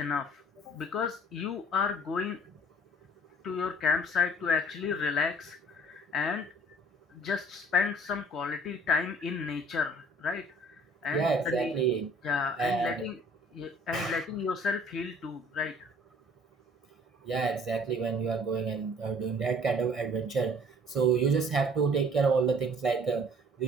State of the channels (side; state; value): both; normal; correlation 0.53